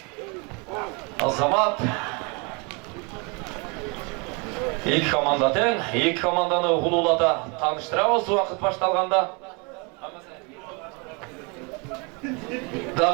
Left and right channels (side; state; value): left; quieter; 31.4 dB